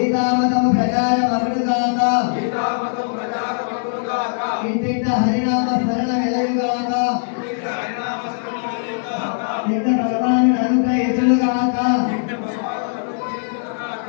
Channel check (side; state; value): right; silent; 66 dB below the other